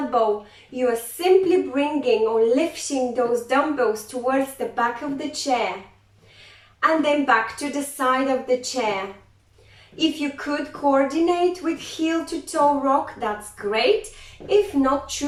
You are simply bringing or lifting those dumbbells towards the back of the chair and then back to the side of the chair. If you could coordinate with heel to toe rock, that's great. If not,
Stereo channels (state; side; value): identical; both; correlation 1.00